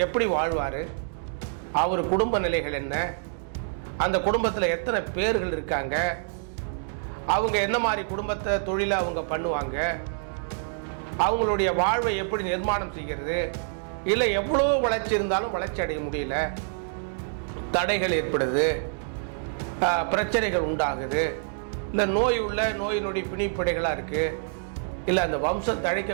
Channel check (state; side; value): silent; left; digital silence